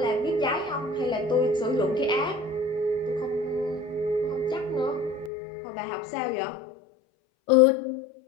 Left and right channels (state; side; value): drops out; right; at 5.3 s